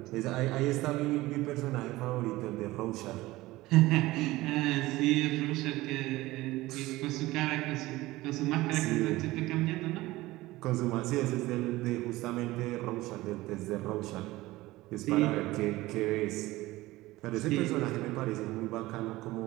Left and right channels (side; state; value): left; quieter; 18.6 dB